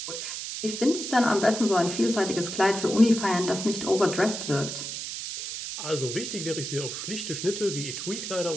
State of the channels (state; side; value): noise; right; hiss, 6 dB below the sound